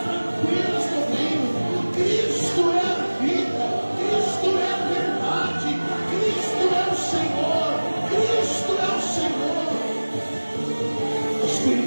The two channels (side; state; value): both; inverted; correlation -1.00